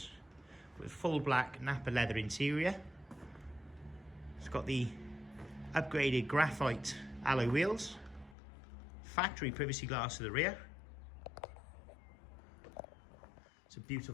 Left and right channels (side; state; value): right; drops out; at 8.3 s